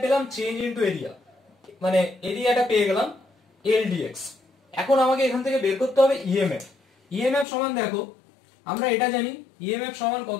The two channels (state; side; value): drops out; right; at 7.5 s